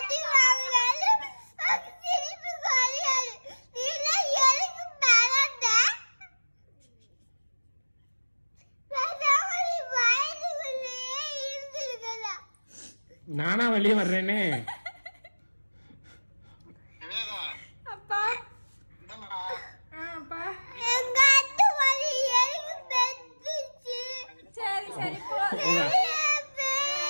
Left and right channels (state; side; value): inverted; both; correlation -1.00